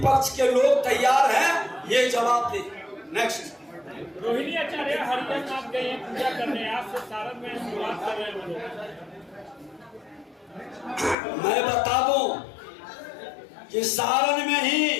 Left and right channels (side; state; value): right; drops out; at 11.2 s